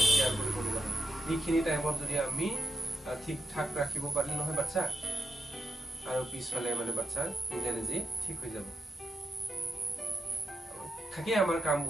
কেয়াৰ কৰিব লগা হয় এইখিনি টাইমত যদি আমি ঠিক ঠাক ৰাখিব পাৰিলে নহয় বাচ্চা আৰু পিছফালে মানে বাচ্চা নিজে নিজে ঠিক হৈ যাব থাকে আমাৰ কাম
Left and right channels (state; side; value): normal; both; correlation 0.86